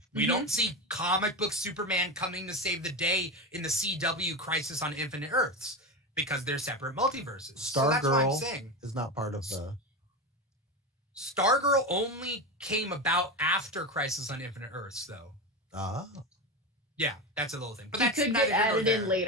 We don't see comic book Superman coming to save the day in the CW Crisis on Infinite Earths because they're separate multiverses. Stargirl is not part of the... Stargirl only came about after Crisis on Infinite Earths, though. Ah. Yeah, that's a little thing. But she that's could get added in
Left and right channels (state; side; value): normal; both; correlation 0.19